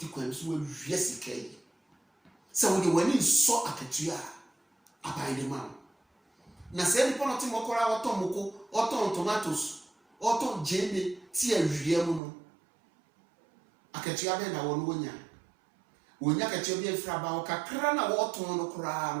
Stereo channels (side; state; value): left; drops out; at 12.2 s